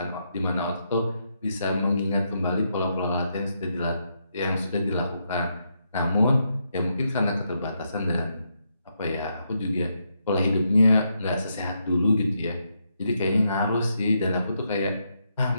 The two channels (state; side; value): inverted; both; correlation -0.80